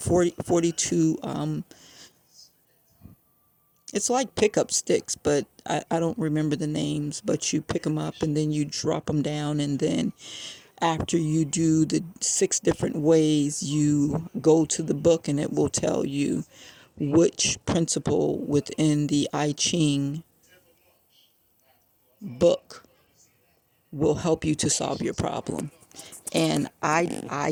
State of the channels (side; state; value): both; identical; correlation 1.00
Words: It's like pickup sticks, but I don't remember the names. But you pick them up and then you drop them down, and then after you do the 6 different ways, you go to the book and it will tell you which principle within the I Ching book will help you to solve your problem. And